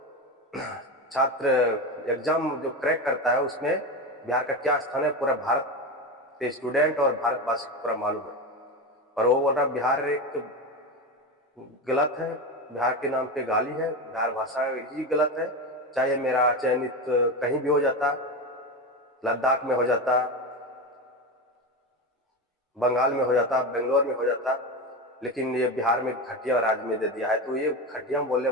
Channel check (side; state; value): both; normal; correlation 0.19